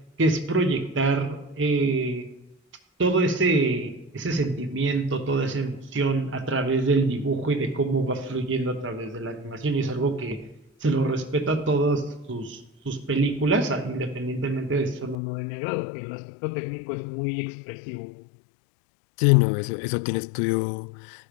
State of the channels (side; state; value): right; drops out; at 15.2 s